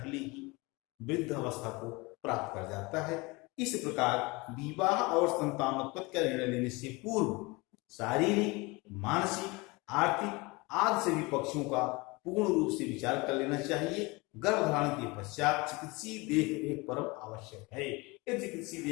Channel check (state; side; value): quieter; right; 25.0 dB